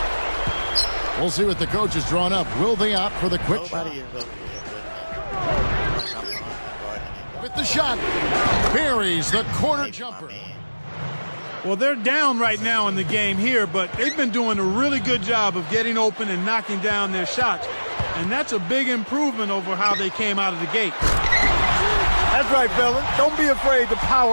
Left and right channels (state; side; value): inverted; both; correlation -1.00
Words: We'll see what the coach has drawn up. Will they opt for the quick shot? Nobody is over here With the shot. Buries the corner jumper. Well, they're down right now in the game here, but they've been doing a really good job of getting open and knocking down their shots. And that's a big improvement over how they came out of the gate. That's right, fellas. Don't be afraid to